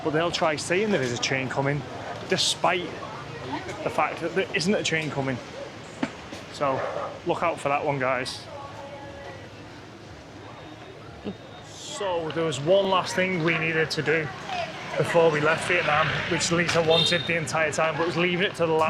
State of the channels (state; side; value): identical; both; correlation 1.00